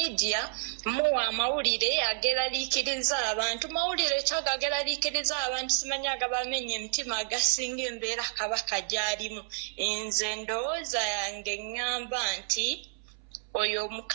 muwa amawulire ageraliikiriza abantu mawulire kyagageraliikiriza abantu simanyi agabamenya emitima agasinga embeera kabaka gy'alimu nze ndowooza yange ŋŋamba nti oyo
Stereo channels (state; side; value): silent; left; 58 dB below the other